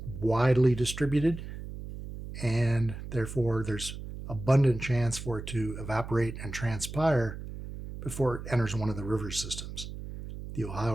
widely distributed, and therefore there's abundant chance for it to evaporate and transpire before it enters one of the river systems. The Ohio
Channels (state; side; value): noise; right; hum, 10 dB below the sound